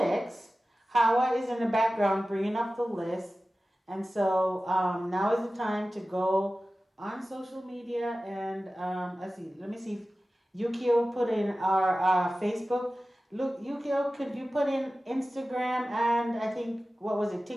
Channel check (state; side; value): normal; both; correlation 0.96